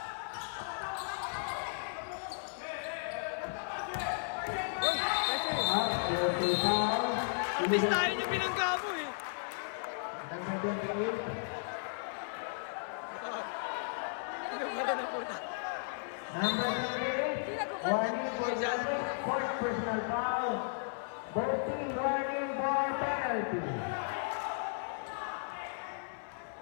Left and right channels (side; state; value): right; silent; 54 dB below the other